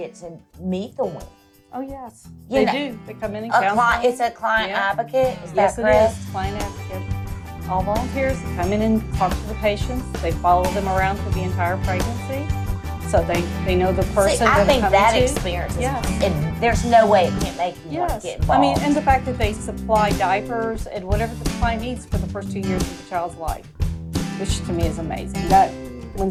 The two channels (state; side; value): identical; both; correlation 1.00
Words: to meet the women. Oh, yes. You They know, do. They come in and counsel. It's a client advocate. Is Yes, that it correct? is. Client advocate. All volunteers come in and talk to the patients. They follow them around through the entire pregnancy. So they know the person See, I that think they're that coming to. experience is, Yes. and there's no way it can't make you want Yes. to get involved. I mean, and the fact that they supply diapers and whatever the client needs for the first 2 years of the child's life, which to me is amazing. That